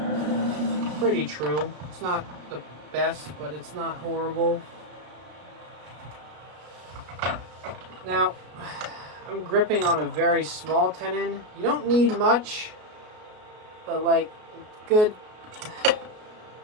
pretty true. It's not the best, but it's not horrible. Now, I'm gripping on a very small tenon. You don't need much, but like good.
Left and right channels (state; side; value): late; left; 33 ms